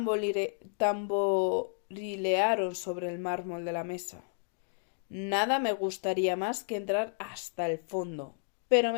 tamborilearon sobre el mármol de la mesa. Nada me gustaría más que entrar hasta el fondo, pero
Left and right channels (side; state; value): right; silent; digital silence